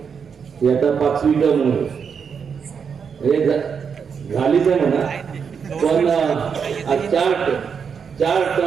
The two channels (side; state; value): left; quieter; 6.5 dB